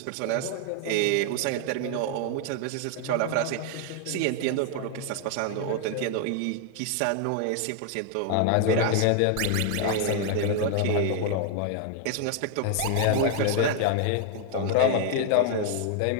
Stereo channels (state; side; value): different; both; correlation 0.00